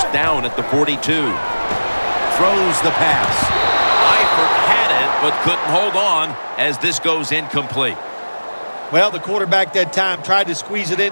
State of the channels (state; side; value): inverted; both; correlation -1.00